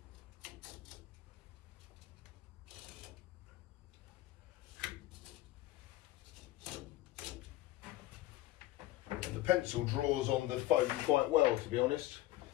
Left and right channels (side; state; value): right; quieter; 15.5 dB